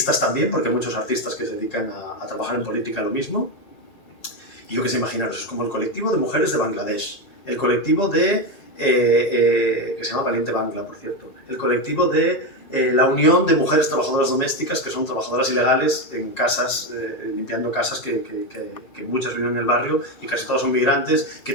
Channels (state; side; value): late; right; 1.9 ms